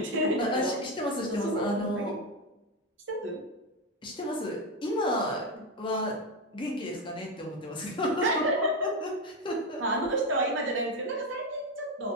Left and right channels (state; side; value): normal; both; correlation 0.10